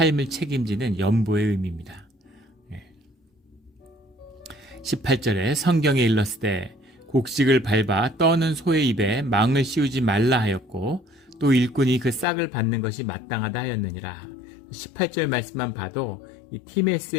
책임지는 연보의 의미입니다. 18절에 성경에 일렀으되 곡식을 밟아 떠는 소의 입에 망을 씌우지 말라 하였고 또 일꾼이 그 싹을 받는 것이 마땅하다 하였느니라. 18절 말씀만 봐도 이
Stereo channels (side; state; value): right; drops out; at 12.2 s